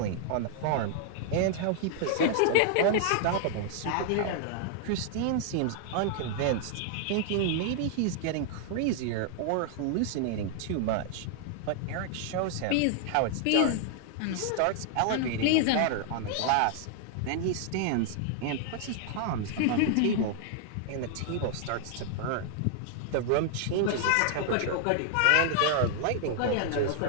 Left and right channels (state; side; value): different; both; correlation 0.00